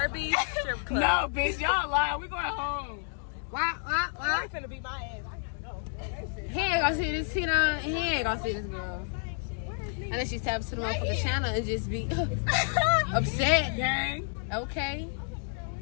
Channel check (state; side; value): silent; right; 58 dB below the other